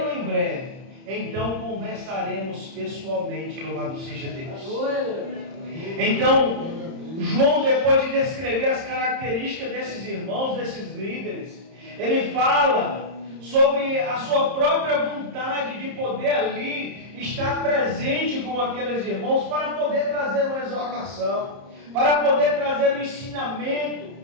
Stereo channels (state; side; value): late; left; 30 ms